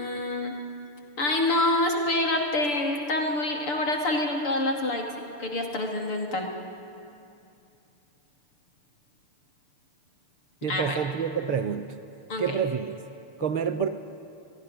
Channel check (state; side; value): late; right; 6.8 ms